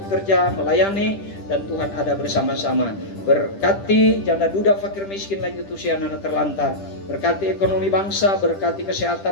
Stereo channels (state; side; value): late; right; 10 ms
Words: melayani, dan Tuhan ada bersama-sama. Berkati janda duda, fakir miskin, lanjut usia, anak terlantar. Berkati ekonomi bangsa, berkati